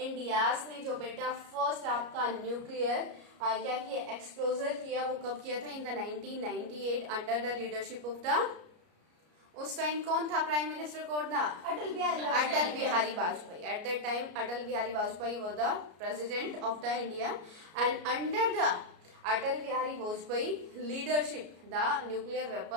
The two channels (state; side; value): late; left; 33 ms